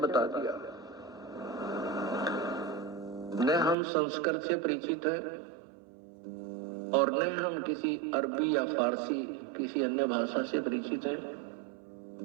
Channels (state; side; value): drops out; left; at 3.8 s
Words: दिया। न हम संस्कृत से परिचित हैं और न हम किसी अरबी या फारसी किसी अन्य भाषा से परिचित हैं।